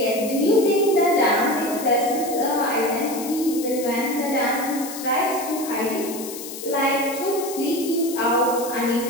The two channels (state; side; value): noise; left; hiss, 11 dB below the sound